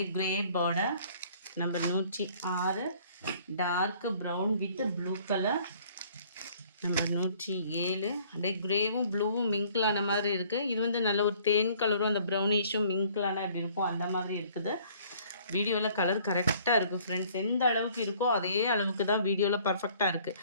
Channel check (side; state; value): both; inverted; correlation -0.57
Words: grey border. Number 106 torque brown with blue colour. Number 107 அப்படியே கிரேவும் ப்ளூவும் மிங்க்லான மாதிரி இருக்குது. இது வந்து நல்ல ஒரு தேன் கலரும் அந்த ப்ரௌனிஷும் மிங்க்லான அப்படி இருக்கும், அந்த மாதிரி இருக்குது. வீடியோவில் கலர் கரெக்டாக இருக்குது ஃப்ரெண்ட்ஸ். எந்த அளவுக்கு இருக்கோ அதே அளவுக்கு தான் வீடியோவில் பர்ஃபெக்டாக இருக்குது.